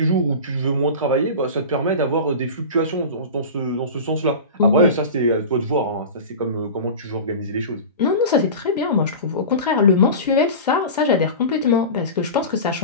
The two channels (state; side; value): inverted; both; correlation -0.30